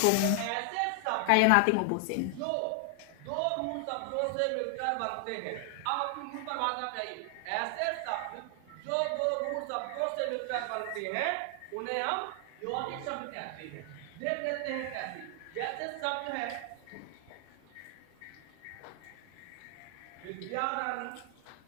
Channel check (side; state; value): both; different; correlation 0.00